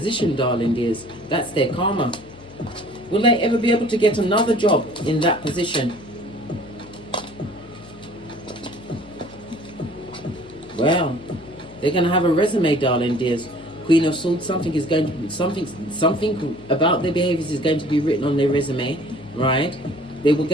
darling dears. That's their karma. Will they ever be able to get another job in that position? Well, they're going to have a resume, darling dears. Queen of Swords, something about their behaviors is going to be written on their resume, right? They were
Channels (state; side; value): noise; left; hum, 22 dB below the sound